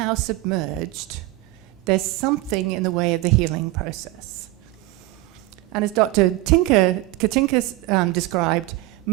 submerged, there's something in the way of the healing process. And as Dr. Katinka described,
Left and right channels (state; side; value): quieter; left; 18.4 dB